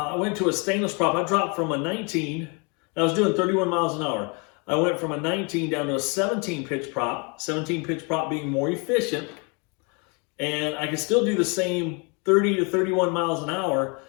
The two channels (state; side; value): quieter; right; 32.8 dB